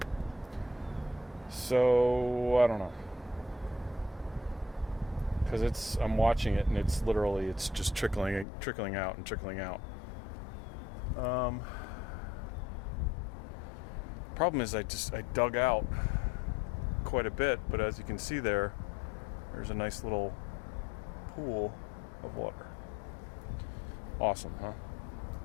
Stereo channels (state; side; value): drops out; right; at 8.5 s